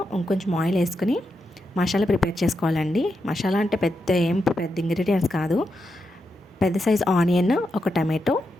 ఇంకొంచెం ఆయిల్ వేసుకుని మసాలా ప్రిపేర్ చేసుకోవాలండి. మసాలా అంటే పెద్ద ఇంగ్రీడియంట్స్ కాదు. పెద్ద సైజ్ ఆనియన్, ఒక టమాటో,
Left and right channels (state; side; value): normal; both; correlation 0.85